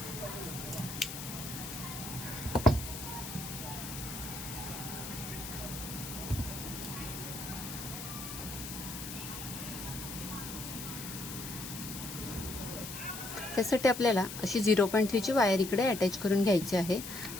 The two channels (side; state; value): left; noise; hiss, 8 dB below the sound